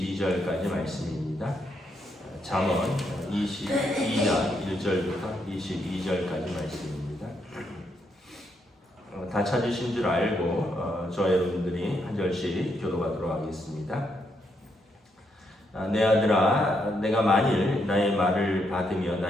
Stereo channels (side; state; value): both; normal; correlation 0.78